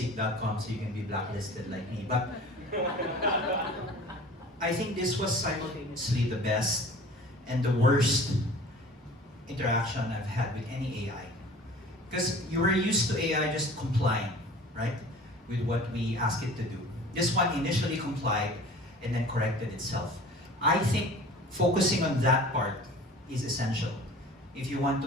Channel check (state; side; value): normal; both; correlation 0.43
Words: so you can be blacklisted like me. But I think this was simultaneously the best and the worst interaction I've had with any AI. Because you were used to AI just complying, right? With what we ask it to do. This one initially complied and then corrected itself. I think focusing on that part is essential if you want